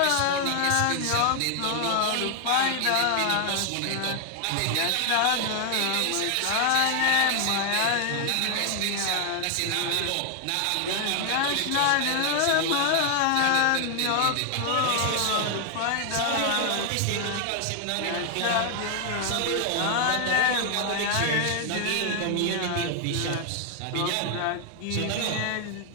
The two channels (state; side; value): different; both; correlation 0.00